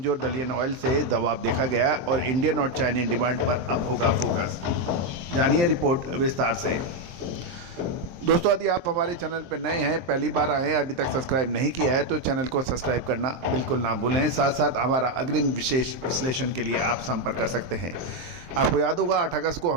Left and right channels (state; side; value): late; left; 23 ms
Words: डलियन ऑयल से दबाव देखा गया और इंडियन और चाइनीज डिमांड पर अब होगा फोकस। जानिए रिपोर्ट विस्तार से। दोस्तों यदि आप हमारे चैनल पर नए हैं, पहली बार आए हैं, अभी तक सब्सक्राइब नहीं किया है तो चैनल को सब्सक्राइब करना बिल्कुल ना भूलें। साथ साथ हमारा अग्रिम विशेष विश्लेषण के लिए आप संपर्क कर सकते हैं। आपको याद होगा 8 अगस्त को